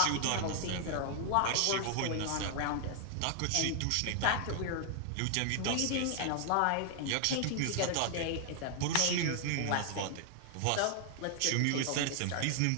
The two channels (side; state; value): both; different; correlation 0.00